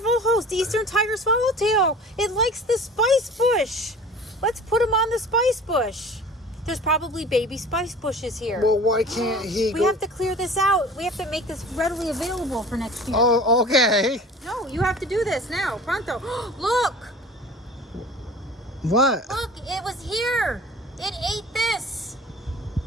host, Eastern tiger swallowtail. It likes the spice bush. Let's put him on the spice bush. There's probably baby spice bushes here. Well, why can't he We have to clear this out. We have to make this readily available for next year. Oh, okay. No, you have to do this now. Pronto. Look! What? Look, it was here. It ate this.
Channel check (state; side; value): normal; both; correlation 0.42